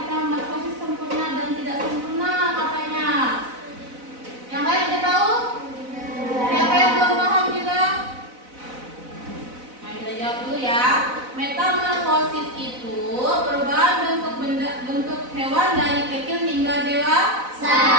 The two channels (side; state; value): left; late; 4.0 ms